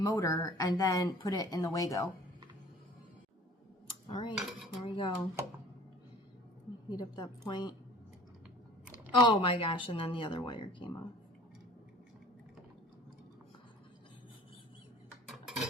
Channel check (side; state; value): both; normal; correlation 0.48